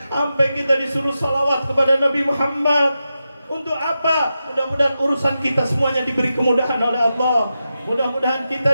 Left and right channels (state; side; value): inverted; both; correlation -0.90